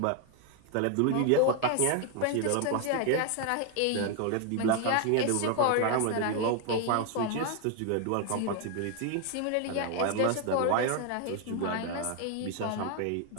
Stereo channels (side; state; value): both; different; correlation 0.01